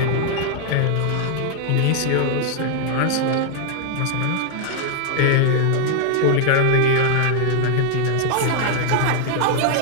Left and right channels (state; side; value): different; both; correlation 0.00